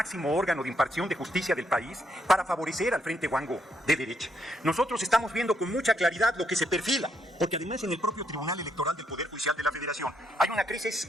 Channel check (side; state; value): both; normal; correlation 0.75